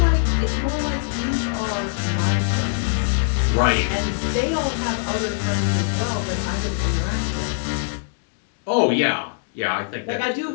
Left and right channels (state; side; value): silent; right; 64 dB below the other